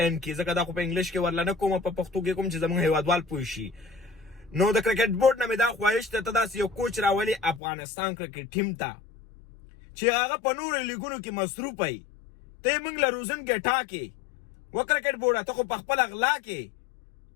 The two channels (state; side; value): drops out; right; at 7.6 s